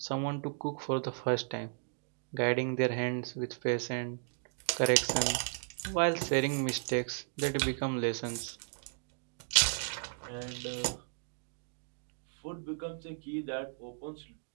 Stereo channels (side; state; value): left; silent; digital silence